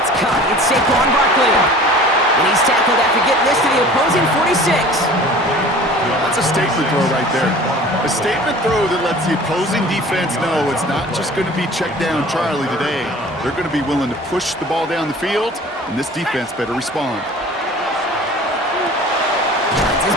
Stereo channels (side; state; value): both; normal; correlation 0.45